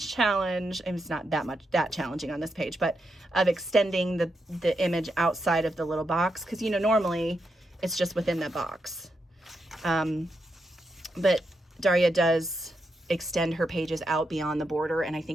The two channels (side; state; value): both; normal; correlation 0.84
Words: and it's not that challenging on this page, but of extending the image outside of the little box. Cause you know, normally it's just within the box. But Daria does extend her pages out beyond the border, and I